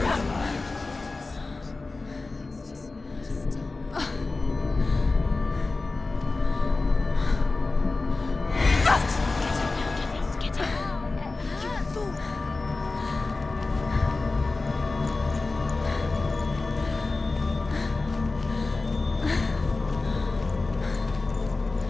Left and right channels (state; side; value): quieter; right; 3.5 dB